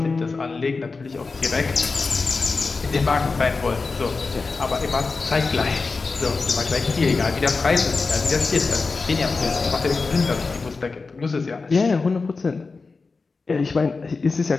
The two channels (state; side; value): quieter; right; 4.2 dB